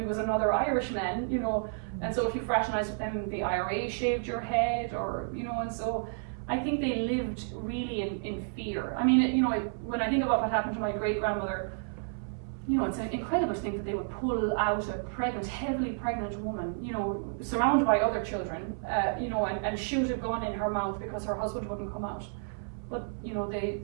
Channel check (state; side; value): silent; left; 57 dB below the other